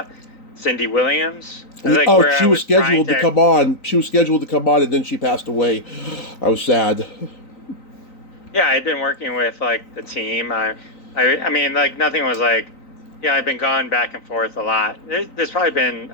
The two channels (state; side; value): late; right; 3.9 ms